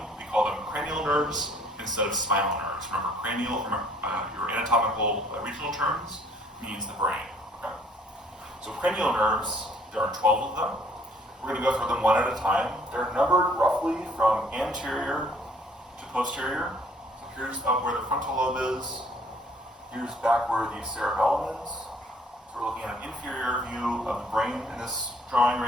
we call them cranial nerves instead of spinal nerves. Remember, cranial from your anatomical regional terms means the brain. Okay? So cranial nerves, there are 12 of them. We're going to go through them one at a time. They're numbered roughly from anterior to posterior. So here's up where the frontal lobe is. Here's back where the cerebellum is. So we're looking at an inferior view of the brain in this drawing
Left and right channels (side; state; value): both; normal; correlation 0.60